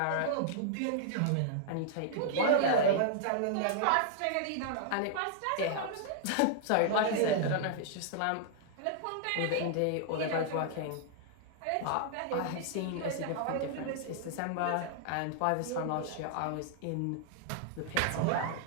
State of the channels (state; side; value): different; both; correlation -0.01